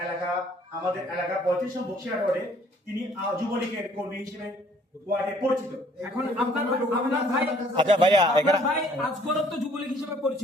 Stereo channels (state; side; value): normal; both; correlation 0.59